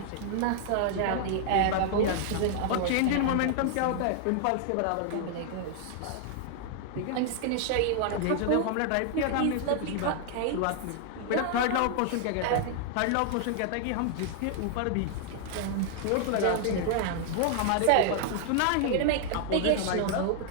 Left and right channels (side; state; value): both; different; correlation 0.00